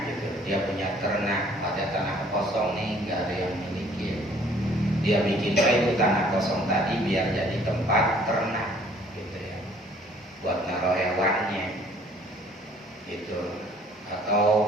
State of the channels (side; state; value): both; normal; correlation 0.58